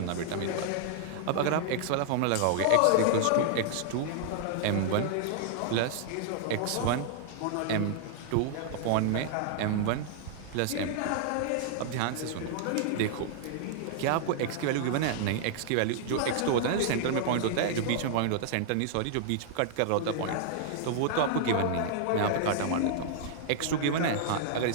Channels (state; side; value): different; both; correlation -0.01